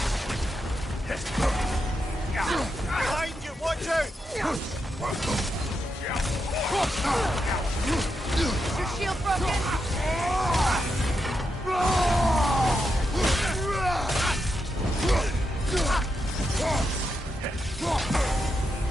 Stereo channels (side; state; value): both; normal; correlation 0.84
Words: Behind you, watch out! Is your shield broken?